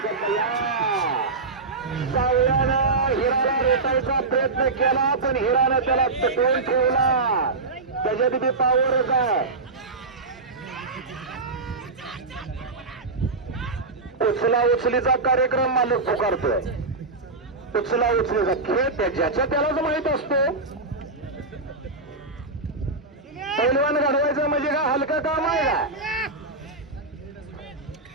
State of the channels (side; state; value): left; quieter; 3.5 dB